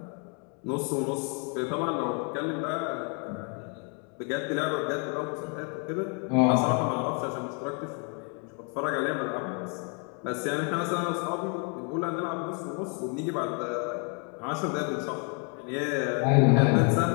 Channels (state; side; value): quieter; right; 38.3 dB